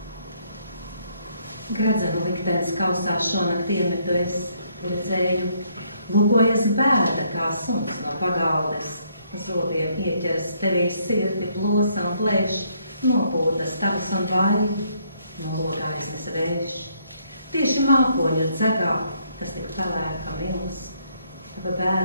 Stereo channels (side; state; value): both; inverted; correlation -0.69